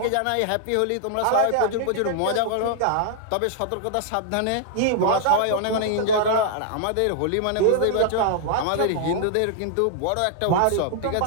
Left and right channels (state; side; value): different; both; correlation -0.01